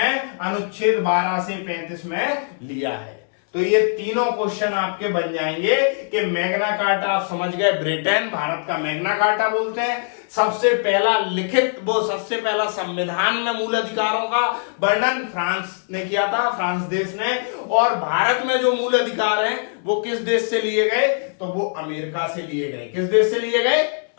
अनुच्छेद 12 से 35 में लिया है। तो ये तीनों क्वेश्चन आपके बन जाएंगे कि मैग्ना कार्टा आप समझ गए, ब्रिटेन भारत का मैग्ना कार्टा बोलते हैं। सबसे पहला लिखित वो सबसे पहला संविधान में मूल अधिकारों का वर्णन फ्रांस ने किया था, फ्रांस देश ने। और भारत में जो मूल अधिकार हैं वो किस देश से लिए गए? तो वो अमेरिका से लिए गए। किस देश से लिए गए?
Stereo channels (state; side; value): silent; right; 62 dB below the other